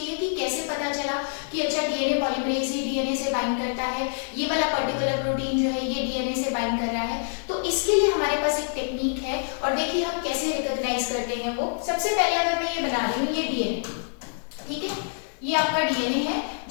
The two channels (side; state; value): right; silent; digital silence